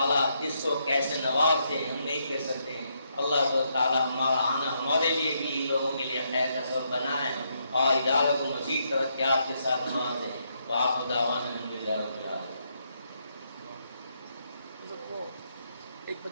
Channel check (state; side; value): inverted; both; correlation -0.77